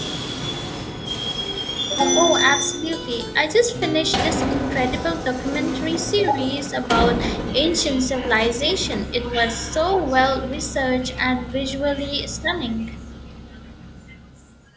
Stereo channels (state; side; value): identical; both; correlation 1.00